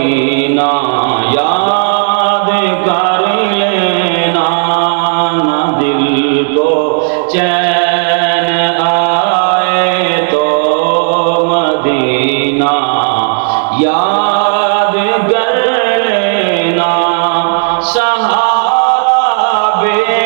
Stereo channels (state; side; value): silent; left; digital silence